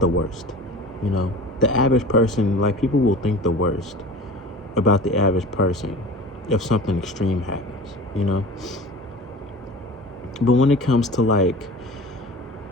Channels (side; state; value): both; normal; correlation 0.39